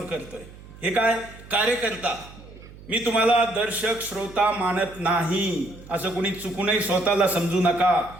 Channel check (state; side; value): noise; right; hum, 19 dB below the sound